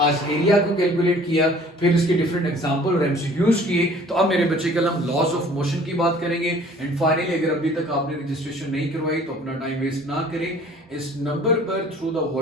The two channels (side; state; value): both; normal; correlation 0.52